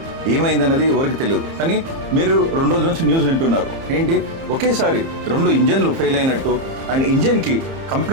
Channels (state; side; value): late; left; 30 ms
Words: ఏమైందన్నది ఎవరికి తెలియదు. కానీ మీరు 2 రోజుల నుంచి న్యూస్ వింటున్నారు. ఏంటి, ఒకేసారి 2 ఇంజన్లు ఫెయిల్ అయినట్టు అండ్ ఇంజన్కి